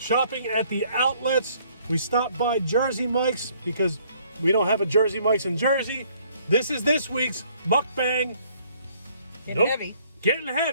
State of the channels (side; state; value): both; inverted; correlation -0.62